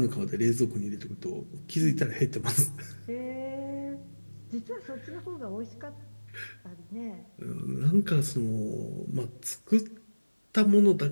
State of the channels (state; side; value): inverted; both; correlation -1.00